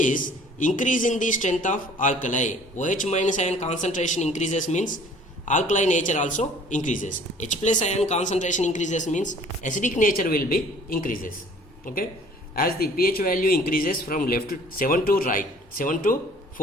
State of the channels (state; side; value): normal; both; correlation 0.53